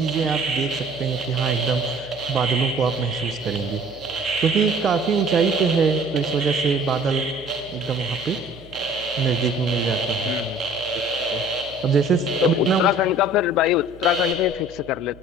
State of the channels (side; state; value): right; noise; hum, 22 dB below the sound